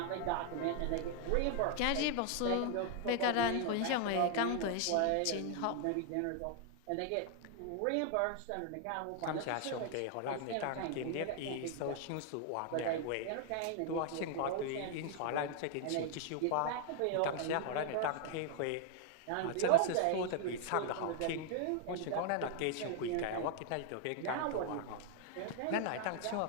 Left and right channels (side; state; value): both; different; correlation 0.00